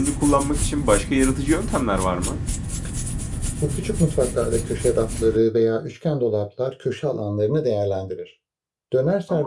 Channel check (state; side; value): identical; both; correlation 1.00